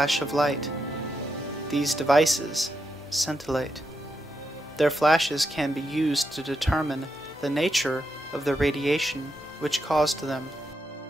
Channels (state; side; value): normal; both; correlation 0.84